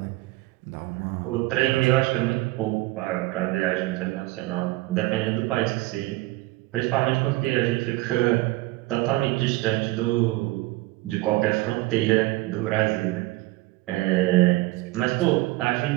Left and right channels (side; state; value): left; quieter; 20.0 dB